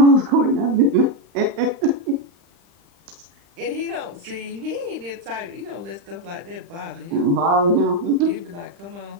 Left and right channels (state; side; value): late; left; 35 ms